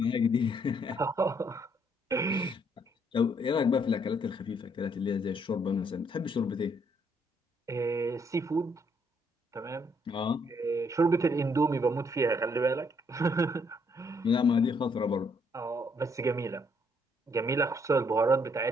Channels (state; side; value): normal; both; correlation 0.70